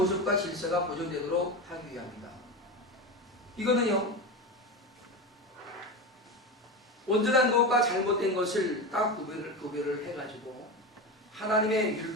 질서가 보존되도록 하기 위함이다. 이거는요, 온전한 것과 잘못된 것을 딱 구별을 해가지고 하나님의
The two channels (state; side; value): normal; both; correlation 0.21